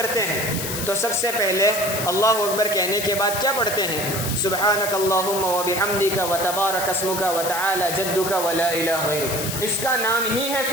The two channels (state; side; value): noise; left; hiss, 4 dB below the sound